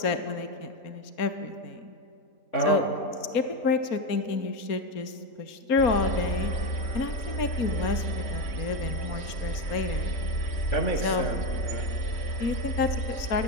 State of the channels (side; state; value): right; late; 4.2 ms